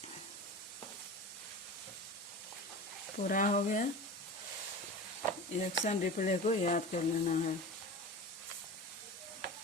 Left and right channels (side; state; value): both; normal; correlation 0.32